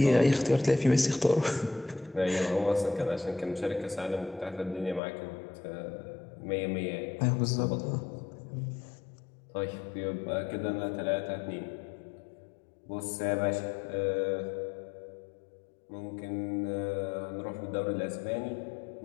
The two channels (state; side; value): drops out; right; at 5.0 s